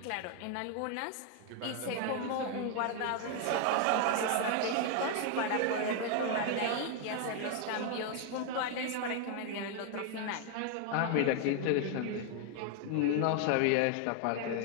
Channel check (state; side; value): different; both; correlation 0.00